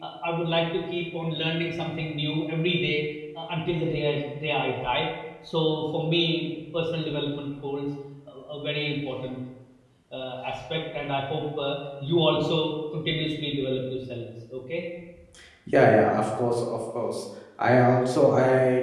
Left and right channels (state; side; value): identical; both; correlation 1.00